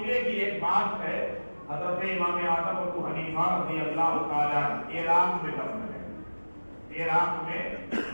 کی ایک بات ہے، حضرت امام اعظم ابو حنیفہ رضی اللہ تعالی عنہ عراق میں دفن ہے، عراق میں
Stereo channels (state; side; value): inverted; both; correlation -1.00